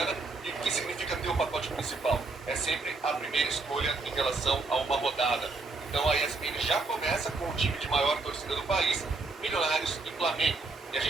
E o que significa ter o pacote principal? É sempre a primeira escolha em relação a uma rodada. Então a ESPN já começa com o time de maior torcida do país, Milionários e Flamengo. E a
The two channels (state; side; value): quieter; left; 3.7 dB